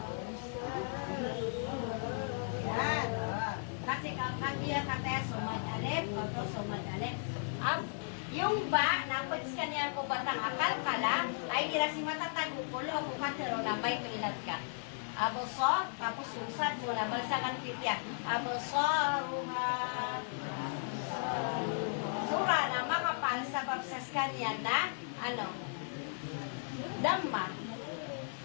Yan. Kasi kaya kataya sumad alip, oto sumad alip. Yung ba, napats ka niyan ko batang akal kala, ay ira si matatagukulo kung katero na may tuilat ka. Aboso, tapos usad mo na, balsakan kitya. Aboso, ruha. Sura na makapal sa babsas kanya na, ano, Dhamma.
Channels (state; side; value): silent; right; digital silence